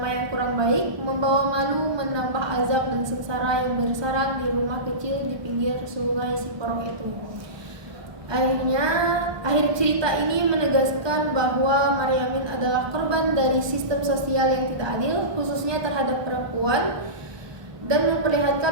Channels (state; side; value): late; left; 1.2 ms